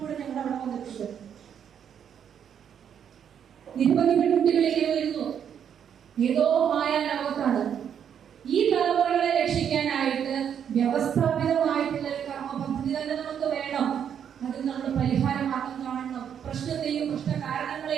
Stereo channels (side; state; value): left; quieter; 8.5 dB